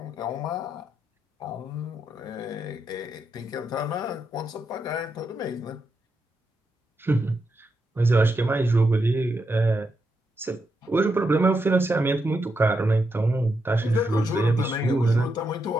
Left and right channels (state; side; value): normal; both; correlation 0.83